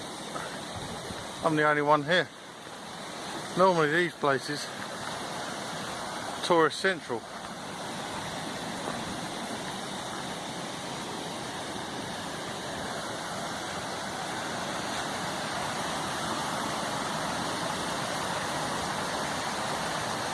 I'm the only one here. Normally these places, tourist central.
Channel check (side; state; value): both; identical; correlation 1.00